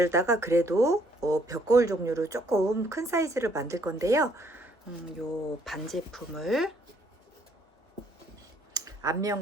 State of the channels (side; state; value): both; normal; correlation 0.66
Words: 그래도 벽거울 종류로 조금 큰 사이즈를 만들 건데요. 요 반제품을